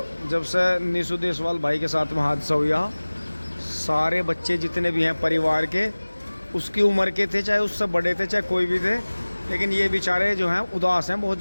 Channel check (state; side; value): inverted; both; correlation -1.00